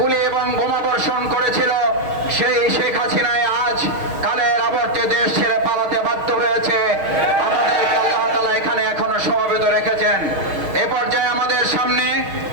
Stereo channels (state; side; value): late; left; 6.4 ms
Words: এবং বোমা বর্ষণ করেছিল সেই শেখ হাসিনায় আজ কালের আবর্তে দেশ ছেড়ে পালাতে বাধ্য হয়েছে আমাদেরকে আল্লাহ তাআলা এখানে এখনো সমবেত রেখেছেন এ পর্যায়ে আমাদের সামনে